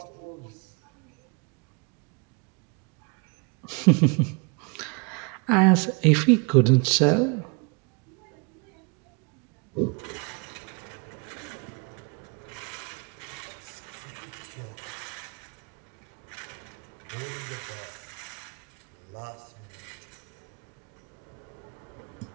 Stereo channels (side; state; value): left; quieter; 32.6 dB